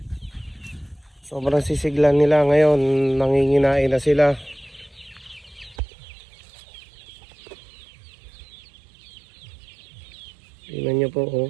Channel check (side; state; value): left; drops out; at 5.8 s